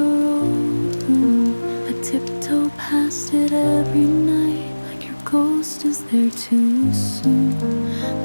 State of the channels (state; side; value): inverted; both; correlation -1.00